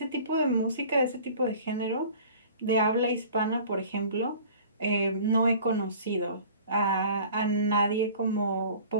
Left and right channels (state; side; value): inverted; both; correlation -0.46